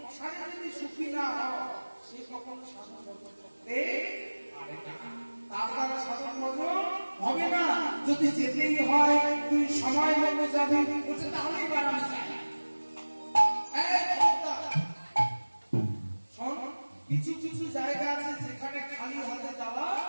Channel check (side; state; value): both; inverted; correlation -1.00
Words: যদি সুখী না হয় সে কখন সাধন করতে পারে না, তার দ্বারা সাধন হবে না। যদি যেতেই হয় তুই সময় মতো যাবি, বলছে তাহলেই বাড়ানো যায়। কিছু কিছু জায়গা আছে যেখানে খালি হাতে যাওয়া